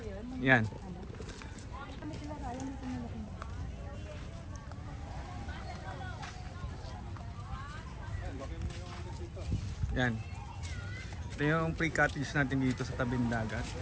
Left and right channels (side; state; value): both; identical; correlation 1.00